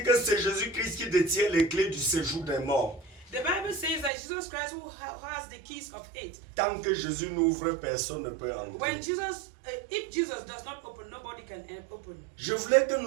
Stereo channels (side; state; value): left; drops out; at 4.1 s